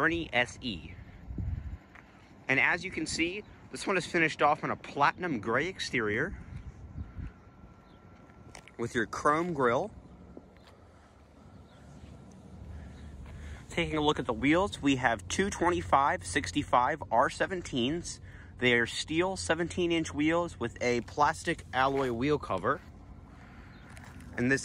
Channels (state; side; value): identical; both; correlation 1.00